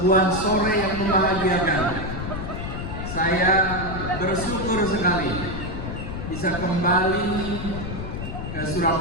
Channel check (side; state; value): left; noise; rumble, 6 dB below the sound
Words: sore yang membahagiakan. Saya bersyukur sekali bisa kembali ke